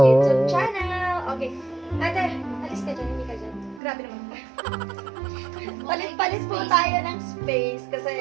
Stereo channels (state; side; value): drops out; left; at 3.8 s